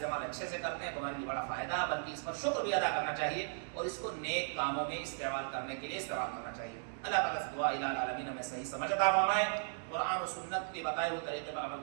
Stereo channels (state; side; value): silent; left; digital silence